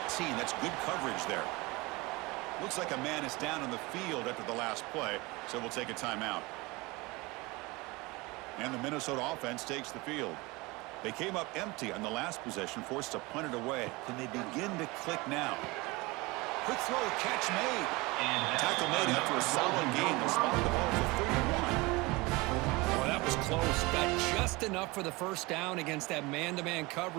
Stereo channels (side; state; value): left; quieter; 23.7 dB